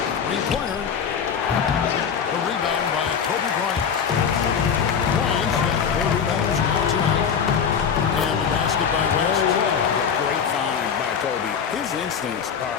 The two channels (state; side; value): quieter; right; 7.1 dB